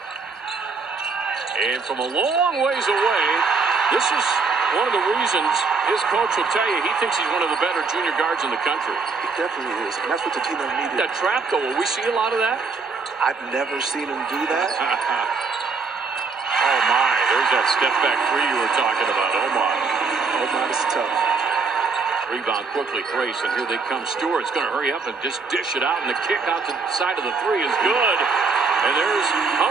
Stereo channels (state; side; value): quieter; left; 4.7 dB